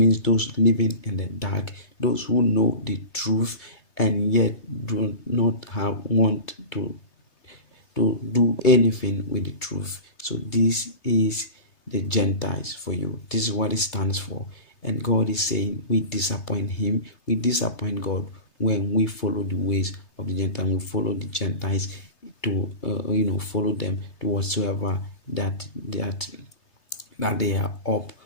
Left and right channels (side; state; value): right; late; 3.3 ms